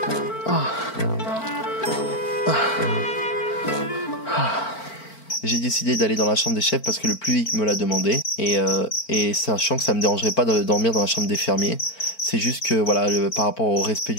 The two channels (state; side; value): late; right; 4.4 ms